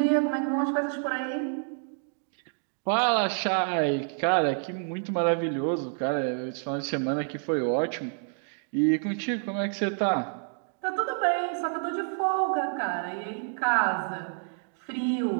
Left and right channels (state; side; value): silent; left; 59 dB below the other